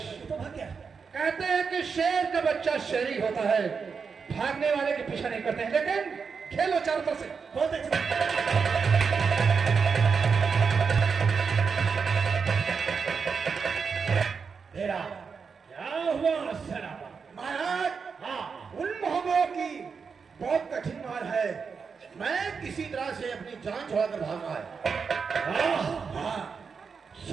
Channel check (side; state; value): left; quieter; 5.6 dB